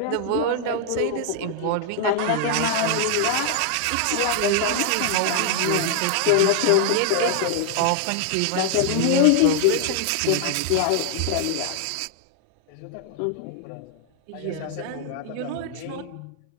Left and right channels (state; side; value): different; both; correlation 0.00